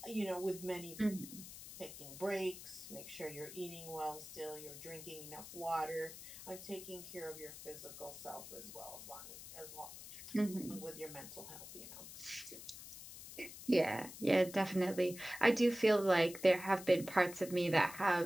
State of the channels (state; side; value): noise; left; hiss, 13 dB below the sound